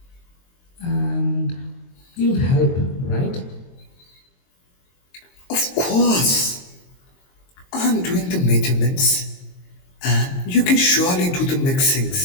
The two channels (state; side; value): late; right; 22 ms